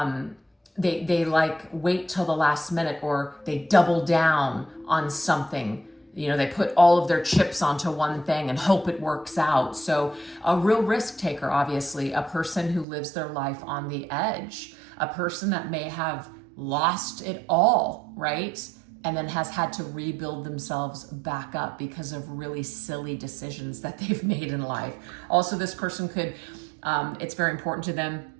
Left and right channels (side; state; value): left; drops out; at 12.9 s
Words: they like wait till the last minute, or they double down on something. You know, they put all of their chips onto one thing and hope it works out. So a real risk taker, obviously, a person who lives their life on the edge, a person that may have lost it all, right? And then has had to rebuild themselves back up because of really silly decisions that they've made in life. Also, this person could, it's very important to them